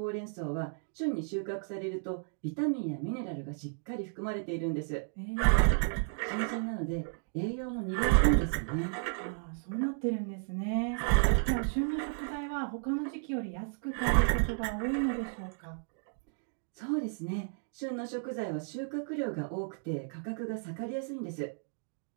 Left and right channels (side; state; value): left; silent; digital silence